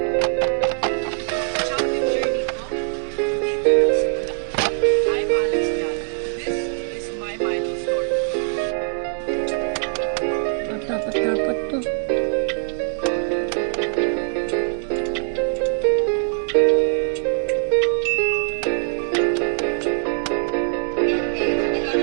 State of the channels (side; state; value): left; silent; digital silence